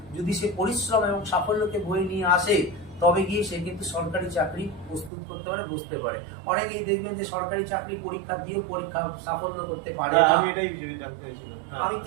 যদি সে পরিশ্রম এবং সাফল্যকে বয়ে নিয়ে আসে, তবে গিয়ে সে কিন্তু সরকারি চাকরি প্রস্তুত করতে পারে, বসতে পারে। অনেকেই দেখবেন যে সরকারি চাকরি পরীক্ষা দিয়েও পরীক্ষা সাফল্য করতে পারে না। আমি এটাই জানতে চাইছিলাম। আমি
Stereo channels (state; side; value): drops out; left; at 5.1 s